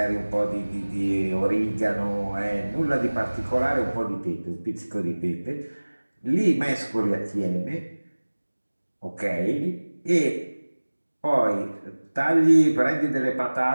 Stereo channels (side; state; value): both; inverted; correlation -1.00